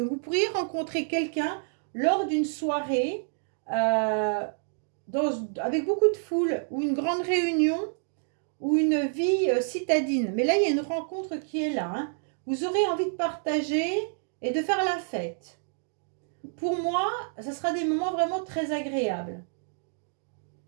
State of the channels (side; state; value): left; silent; digital silence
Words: vous pourriez rencontrer quelqu'un lors d'une soirée avec beaucoup de foule ou une grande réunion ou une vie citadine. Mais là, il y a une rencontre qui est là, hein. Vous aurez envie de partager et de faire la fête. Pour moi, ça sera des moments vraiment très agréables.